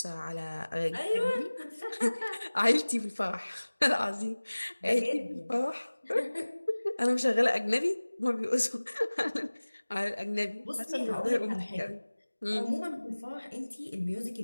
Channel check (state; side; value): inverted; both; correlation -1.00